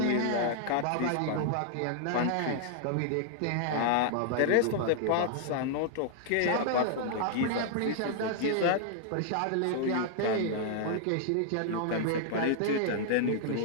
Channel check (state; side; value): different; both; correlation -0.01